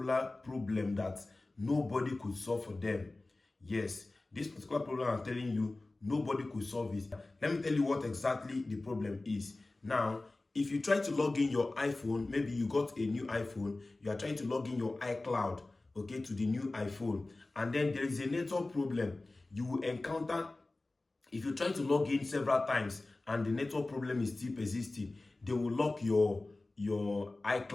problem that nobody could solve for them. Yes, this particular problem I'm telling you, nobody could solve it. Let me tell you what exactly the problem is. Now, if you try to log in your iPhone, maybe you got a new iPhone, you are trying to log in your iCloud, okay, to the new iPhone, and then there is a network problem you will encounter. If you try to log in several times and the network problem is still persisting, they will lock your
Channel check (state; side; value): quieter; right; 3.0 dB